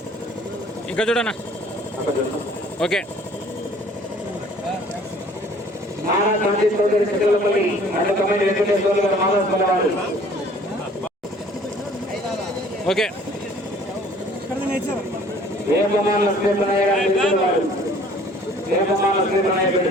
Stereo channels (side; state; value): both; normal; correlation 0.54